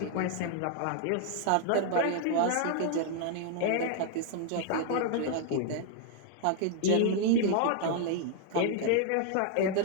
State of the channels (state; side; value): different; both; correlation 0.00